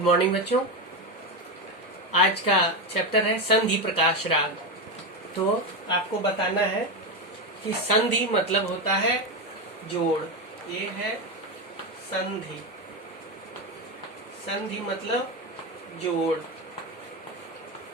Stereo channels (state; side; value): normal; both; correlation 0.13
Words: morning बच्चों। आज का चैप्टर है संधि प्रकाश राग। तो आपको बताना है कि संधि मतलब होता है जोड़। ये है संधि। संधि मतलब जोड़।